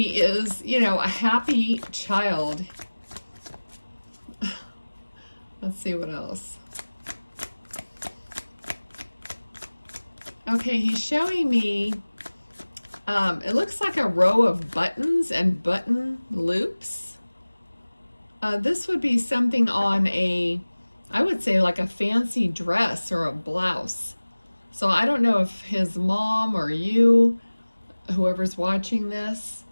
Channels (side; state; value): both; inverted; correlation -1.00